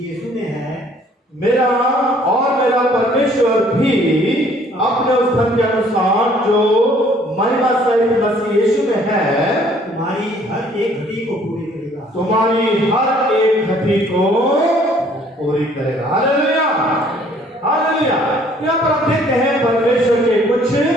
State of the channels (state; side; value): normal; both; correlation 0.59